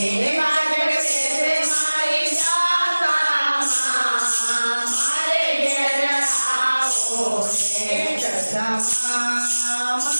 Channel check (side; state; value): both; inverted; correlation -1.00